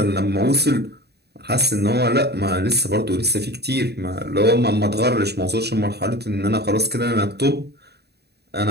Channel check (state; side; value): late; left; 0.48 ms